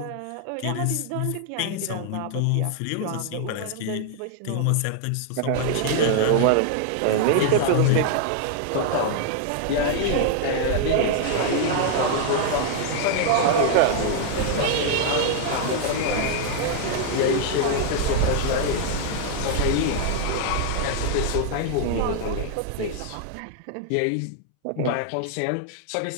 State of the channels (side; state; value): both; different; correlation 0.00